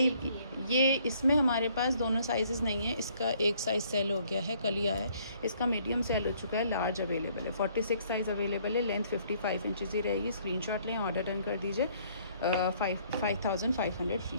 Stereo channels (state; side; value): inverted; both; correlation -0.63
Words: ये इसमें हमारे पास दोनों साइज़ नहीं है, इसका एक साइज़ सेल हो गया है, कल ही आया है। इसका मीडियम सेल हो चुका है, लार्ज अवेलेबल है, 46 साइज़ अवेलेबल है, लेंथ 55 इंचज़ ही रहेगी। स्क्रीनशॉट लें, ऑर्डर डन कर दीजिए 5500 फ्री